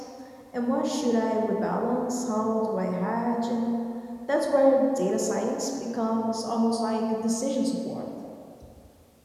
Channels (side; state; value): both; identical; correlation 1.00